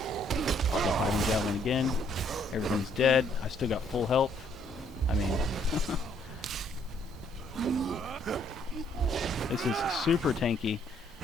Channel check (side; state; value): both; normal; correlation 0.67